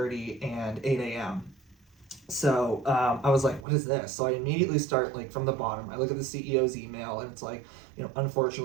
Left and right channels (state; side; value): drops out; left; at 3.7 s